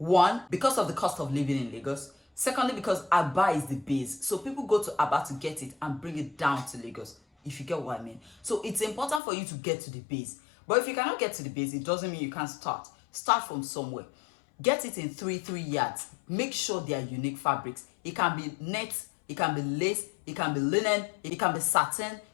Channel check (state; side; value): drops out; right; at 9.2 s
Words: because of the cost of living in Lagos. Secondly, because Aba is the base. So people go to Aba to get it and bring it down to Lagos, if you get what I mean. So it's important for you to get to the base. But if you cannot get to the base, it doesn't mean you can't start. Start from somewhere. Get it in 3 yards. Make sure they are unique fabrics. It can be net, it can be lace, it can be linen, it can be satin,